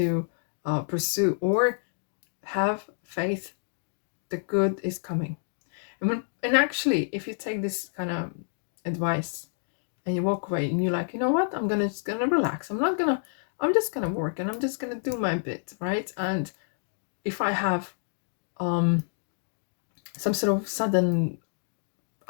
pursue, or have faith. The good is coming. And actually, if you take this kind of advice and you walk away and you're like, you know what, I'm just gonna relax. I'm just gonna work and I'm just gonna do my bit, right? And if I have some sort of sudden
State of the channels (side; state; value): right; silent; digital silence